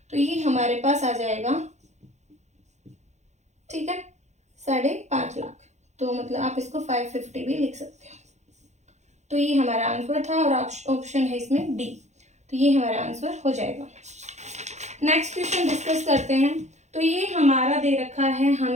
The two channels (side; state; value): left; late; 0.33 ms